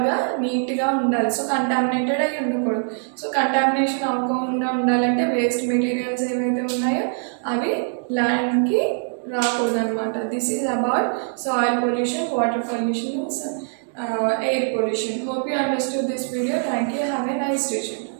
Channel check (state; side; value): silent; left; 63 dB below the other